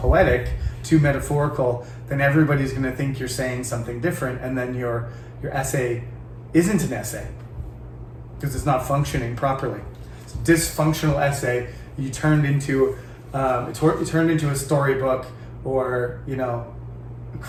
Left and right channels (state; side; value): identical; both; correlation 1.00